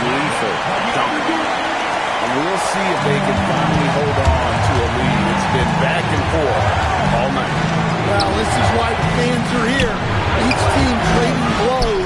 lethal dunk. And we'll see if they can finally hold on to a lead. It's been back and forth all night. Well, this is why the fans are here. Each team trading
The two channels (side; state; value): both; identical; correlation 1.00